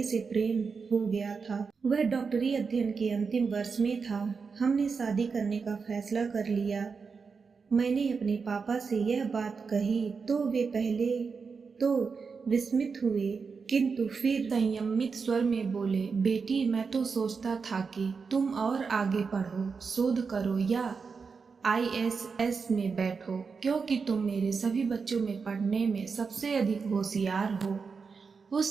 से प्रेम हो गया था। वह डॉक्टरी अध्ययन के अंतिम वर्ष में था। हमने शादी करने का फैसला कर लिया। मैंने अपने पापा से यह बात कही तो वे पहले तो विस्मित हुए, किंतु फिर संयमित स्वर में बोले, बेटी मैं तो सोचता था कि तुम और आगे पढ़ो, शोध करो या ISS में बैठो, क्योंकि तुम मेरे सभी बच्चों में पढ़ने में सबसे अधिक होशियार हो।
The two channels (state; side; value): quieter; left; 5.2 dB